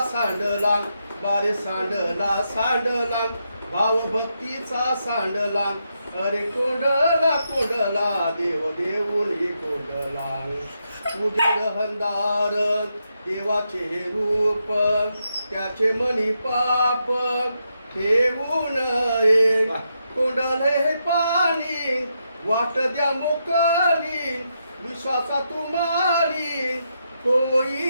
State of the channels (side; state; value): both; inverted; correlation -0.82